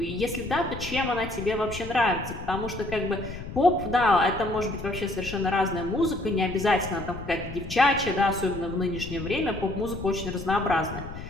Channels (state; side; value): noise; left; rumble, 10 dB below the sound